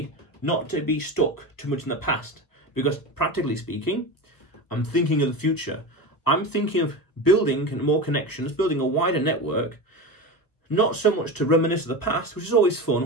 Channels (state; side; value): late; right; 1.4 ms